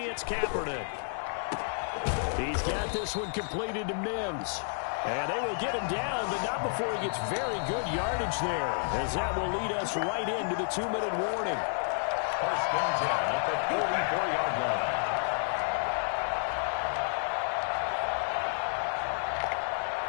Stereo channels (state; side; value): silent; right; digital silence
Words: Kaepernick. He's got this one completed to Mims. And they will get him down, but not before he gets very good yardage there, as that will lead us right into the 2-minute warning. First and 10 at the 44-yard line.